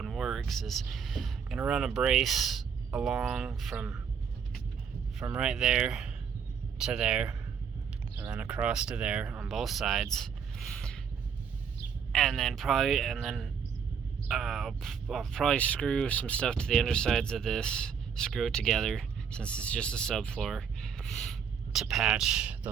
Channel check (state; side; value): quieter; left; 7.0 dB